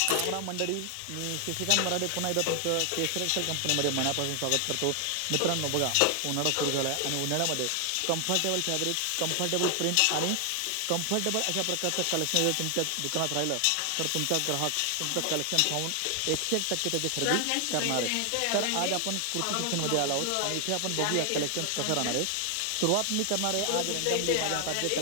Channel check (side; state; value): both; different; correlation 0.00